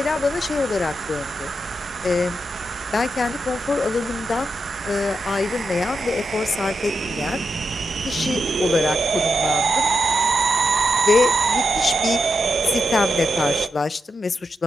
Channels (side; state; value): both; normal; correlation 0.86